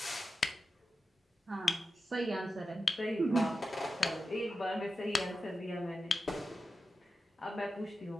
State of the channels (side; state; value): both; normal; correlation 0.91